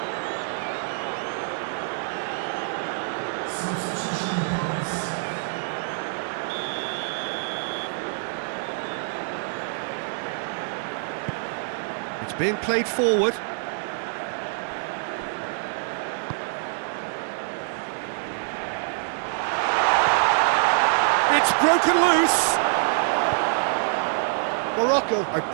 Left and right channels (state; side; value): silent; left; digital silence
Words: It's being played forward. It's broken loose. Morocco are